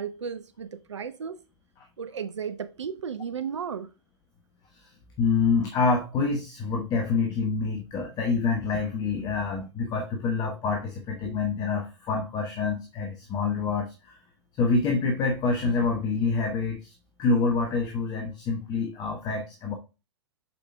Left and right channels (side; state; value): right; quieter; 3.5 dB